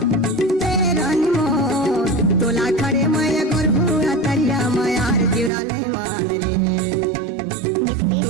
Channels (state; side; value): drops out; left; at 5.5 s